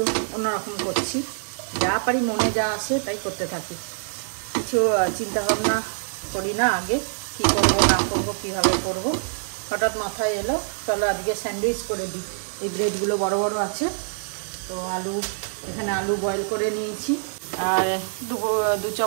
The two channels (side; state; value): left; silent; 57 dB below the other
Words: অন্যরকম করছি, যা পারি মনে যা আসে তাই করতে থাকি। কিছু চিন্তা ভাবনা করি না আগে, কি করব না করব, কিভাবে করব। হঠাৎ মাথায় এলো, চলো আজকে স্যান্ডউইচ করে দিই। এই ব্রেডগুলো বড় বড় আছে তো এখানে আলু বয়েল করে নিয়েছি, আর দু